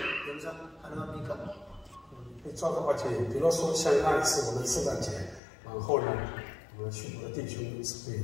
영상 가능합니까? 照的话，比如说像那一次我们圣诞节，然后呢，我们去的弟兄是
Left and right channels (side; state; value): right; drops out; at 5.4 s